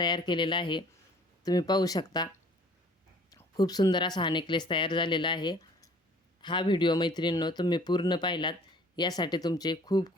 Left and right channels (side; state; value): both; normal; correlation 0.53